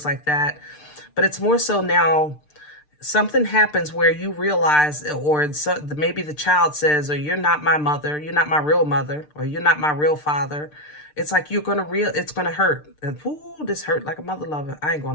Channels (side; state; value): right; late; 6.7 ms